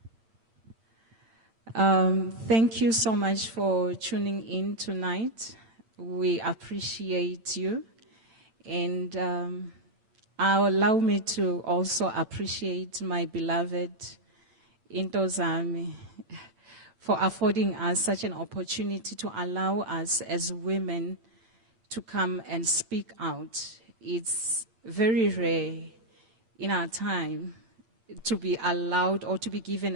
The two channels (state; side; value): late; left; 8.9 ms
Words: Thank you so much for tuning in tonight. We appreciate you. And allow me to also appreciate my beloved Intozami for affording us such an opportunity to allow us as women to come and speak out. It's very rare in our time to be allowed or to be given